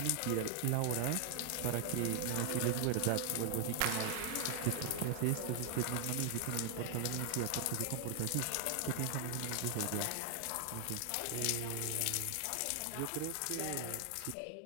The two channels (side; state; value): both; different; correlation 0.00